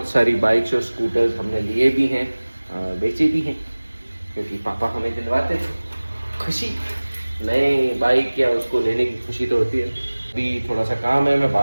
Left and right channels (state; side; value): inverted; both; correlation -1.00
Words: सारी बाइक्स और स्कूटर्स हमने लिए भी हैं, बेचे भी हैं, क्योंकि पापा हमें दिलवाते थे। खुशी नए बाइक या उसको लेने की खुशी तो होती है। अभी थोड़ा सा काम है, मैं